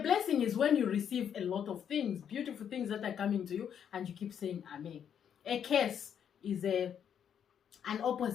is when you receive a lot of things, beautiful things that are coming to you, and you keep saying amen. A curse is an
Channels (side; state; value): right; quieter; 8.5 dB